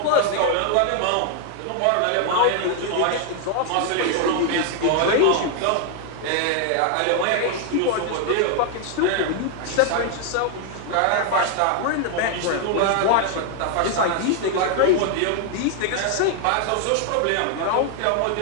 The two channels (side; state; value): both; different; correlation 0.00